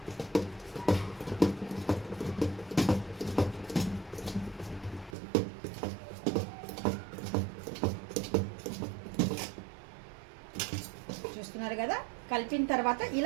చూస్తున్నారు కదా, కలిపిన తర్వాత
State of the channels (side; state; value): left; drops out; at 5.2 s